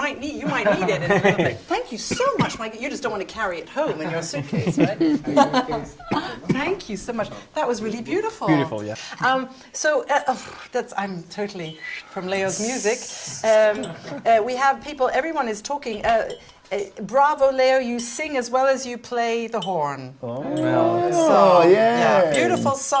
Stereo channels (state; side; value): identical; both; correlation 1.00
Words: need, you might need it in a little bit. Thank you so much, Mike. You just don't want to carry it home in your suitcase, right? Thank you so much. That was really beautiful. Beautiful, yeah. I'm totally from Leo's music. We have people, everyone is talking. Bravo, Leo, you sing as well as you play the horn. Oh, Yeah, beautiful